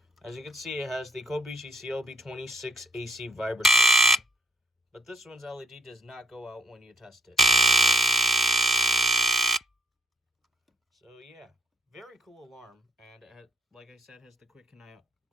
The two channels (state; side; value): normal; both; correlation 0.69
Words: As you can see, it has the Kobishi CLB26 AC vibrator. But this one's LED does not go out when you test it. So yeah, very cool alarm. And it has, like I said, has the quick